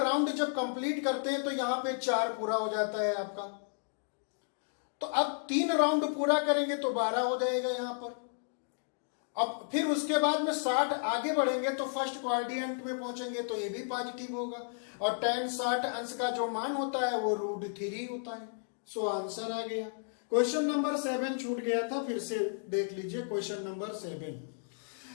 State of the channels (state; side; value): silent; right; digital silence